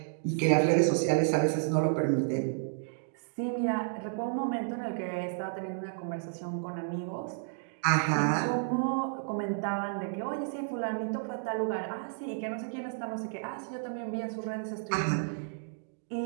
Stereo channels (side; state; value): left; silent; digital silence